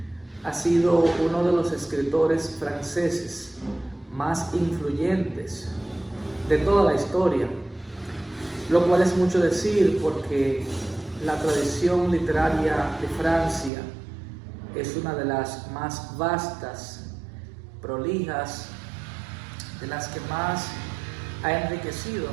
ha sido uno de los escritores franceses más influyentes de toda la historia, lo cual es mucho decir porque la tradición literaria de Francia es una de las más vastas, prolijas, de las que más ha enriquecido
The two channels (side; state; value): left; drops out; at 13.7 s